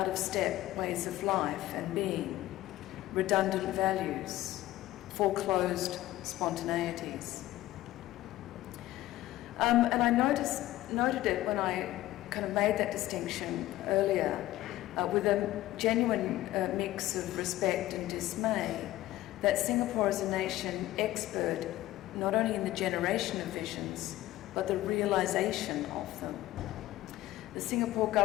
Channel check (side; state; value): right; quieter; 15.6 dB